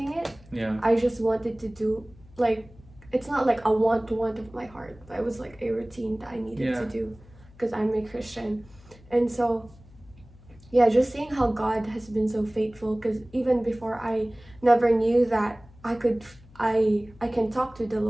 it. Yeah. I just wanted to do, like, it's not like a want of my heart, but it was like a routine that I needed to do because I'm a Christian. And so, yeah, just seeing how God has been so faithful, because even before I never knew that I can talk to the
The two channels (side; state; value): left; noise; hum, 24 dB below the sound